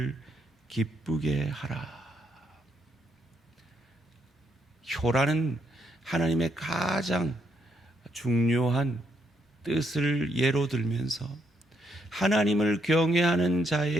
기쁘게 하라. 효라는 하나님의 가장 중요한 뜻을 예로 들면서 하나님을 경외하는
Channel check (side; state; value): both; normal; correlation 0.76